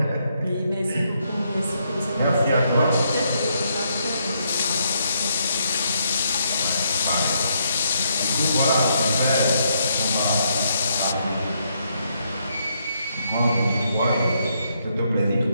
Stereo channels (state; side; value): inverted; both; correlation -0.75